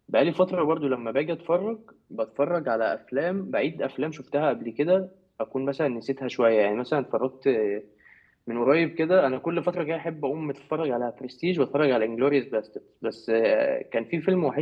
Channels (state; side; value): identical; both; correlation 1.00